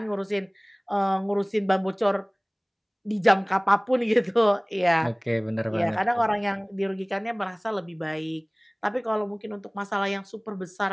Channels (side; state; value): both; identical; correlation 1.00